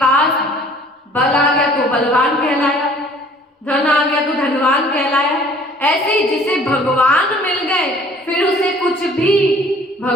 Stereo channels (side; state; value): both; normal; correlation 0.53